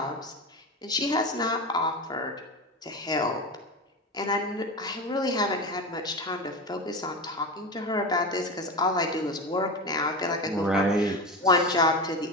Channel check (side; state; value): both; normal; correlation 0.23